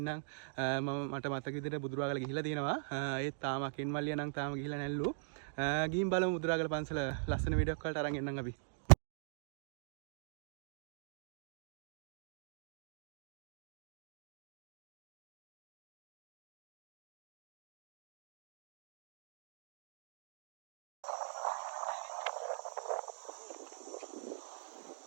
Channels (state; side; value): silent; left; digital silence